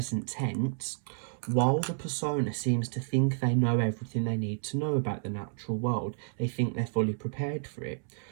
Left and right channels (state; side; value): silent; left; 57 dB below the other